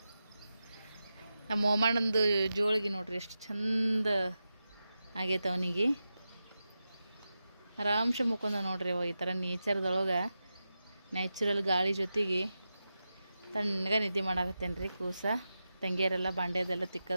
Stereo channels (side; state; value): both; inverted; correlation -0.91